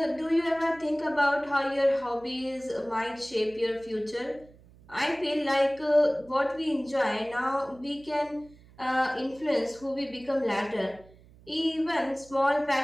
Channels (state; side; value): noise; right; hum, 25 dB below the sound